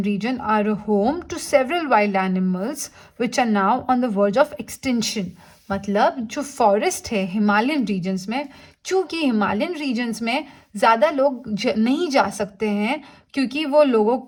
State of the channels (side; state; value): both; identical; correlation 1.00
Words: region are a home to several wild animals which are now on the verge of extinction. मतलब जो फॉरेस्ट है हिमालयन रीजन्स में, चूँकि हिमालयन रीजन्स में ज़्यादा लोग नहीं जा सकते हैं, क्योंकि वो लोगों